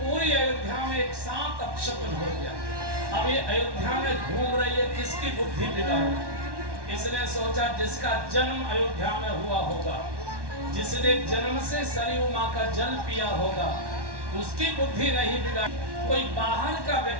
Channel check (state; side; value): late; left; 1.1 ms